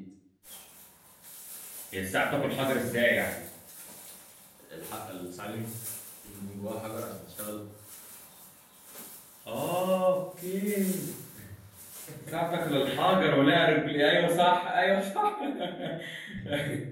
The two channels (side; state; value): both; identical; correlation 1.00